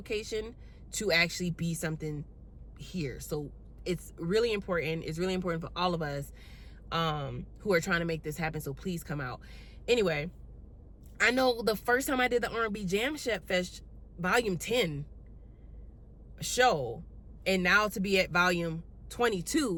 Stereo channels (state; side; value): identical; both; correlation 1.00